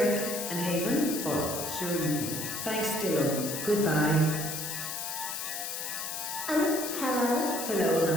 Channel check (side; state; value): left; noise; hiss, 4 dB below the sound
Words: and Haven? Oh, sure you can. Thanks, Dylan. Goodbye. Hello? Hello,